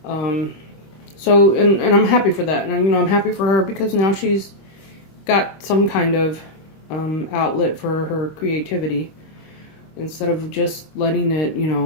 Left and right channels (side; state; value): right; late; 26 ms